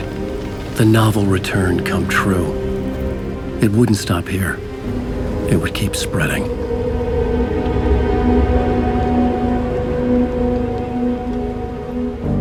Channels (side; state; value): both; identical; correlation 1.00